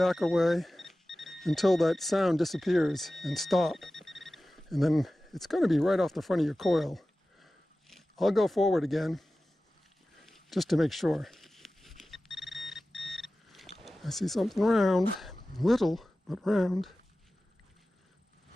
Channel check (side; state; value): both; normal; correlation 0.96